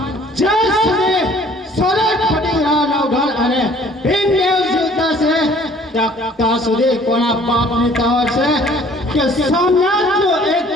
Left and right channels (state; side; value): normal; both; correlation 0.55